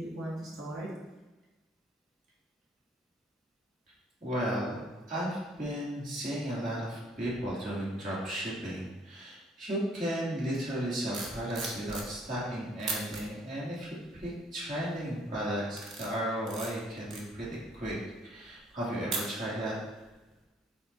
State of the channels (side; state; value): both; normal; correlation 0.62